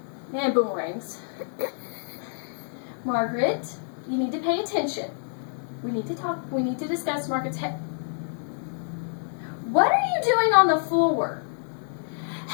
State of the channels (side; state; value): right; silent; 60 dB below the other